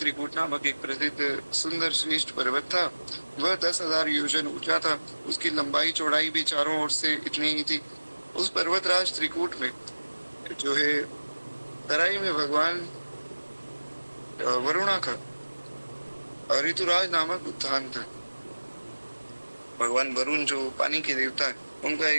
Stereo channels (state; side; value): inverted; both; correlation -1.00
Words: नामक एक प्रसिद्ध सुंदर श्रेष्ठ पर्वत था। वह 10,000 योजन ऊंचा था। उसकी लंबाई चौड़ाई भी चारों ओर से इतनी ही थी। उस पर्वतराज त्रिकूट में जो है तराई में भगवान वरुणा का ऋतुराज नामक उद्यान था। भगवान वरुण जो पानी के देवता है, उनका